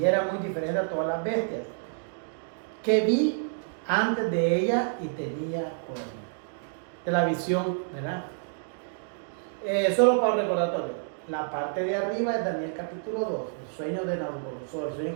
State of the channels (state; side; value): silent; left; digital silence